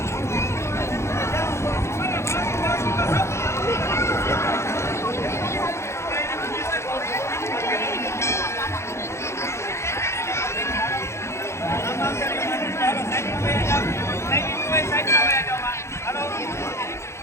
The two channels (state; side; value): late; right; 0.13 ms